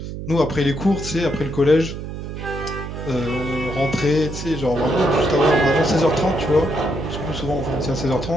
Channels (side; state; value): right; noise; hum, 8 dB below the sound